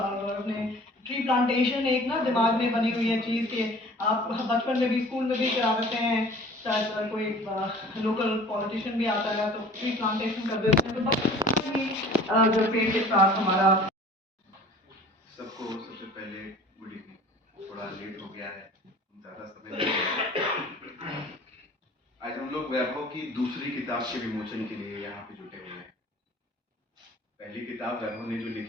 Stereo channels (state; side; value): normal; both; correlation 0.47